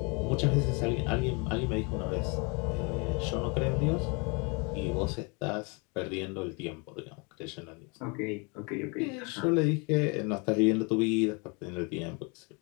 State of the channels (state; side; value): quieter; right; 31.7 dB